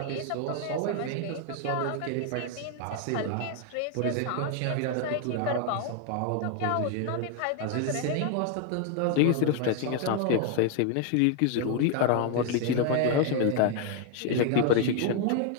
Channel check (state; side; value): different; both; correlation 0.00